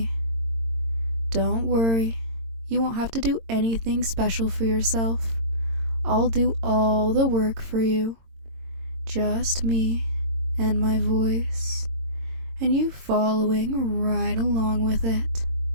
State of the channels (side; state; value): left; late; 22 ms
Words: Don't worry, you won't have to do anything special for yourself. I'll do all the work for you. Just me and my voice, and you following right along with it.